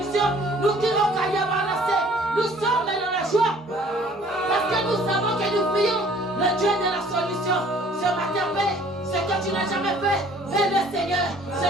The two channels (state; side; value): normal; both; correlation 0.55